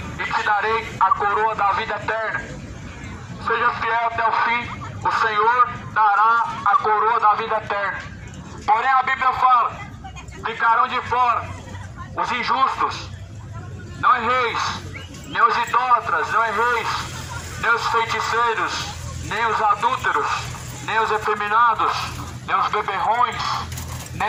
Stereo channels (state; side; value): identical; both; correlation 1.00